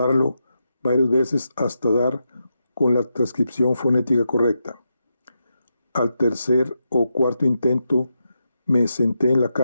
varias veces hasta dar con la transcripción fonética correcta. Al tercer o cuarto intento me senté en la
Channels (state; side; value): inverted; both; correlation -0.86